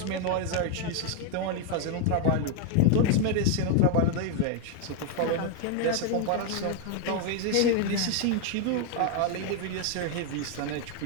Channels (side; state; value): both; different; correlation 0.00